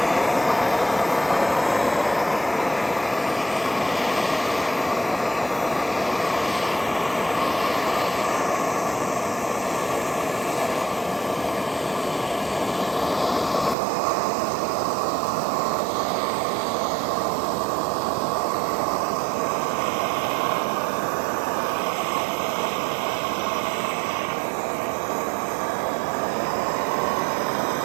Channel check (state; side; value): drops out; left; at 13.8 s